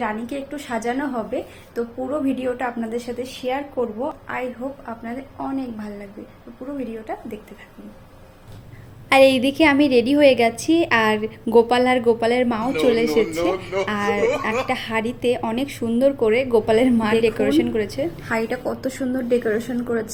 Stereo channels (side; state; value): both; identical; correlation 1.00